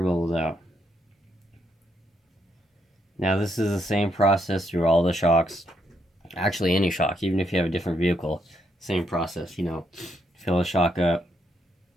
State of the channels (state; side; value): normal; both; correlation 0.76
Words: bubbles out. Now this is the same process through all the shocks. Actually, any shock, even if you have a different vehicle, same process, you know. Fill the shock up.